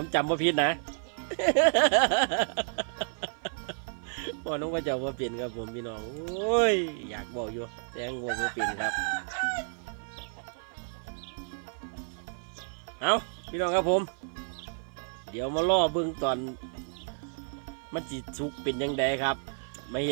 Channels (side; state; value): left; silent; 57 dB below the other